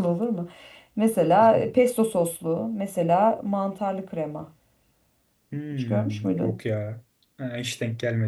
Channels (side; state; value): both; identical; correlation 1.00